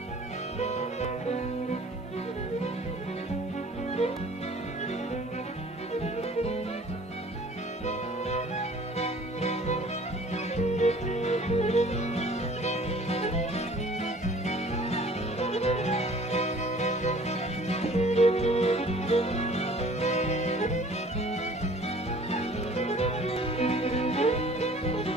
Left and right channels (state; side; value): normal; both; correlation 0.51